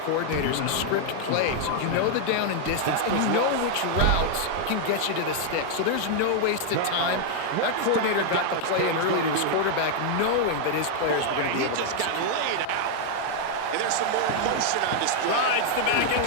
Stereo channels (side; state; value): both; different; correlation 0.00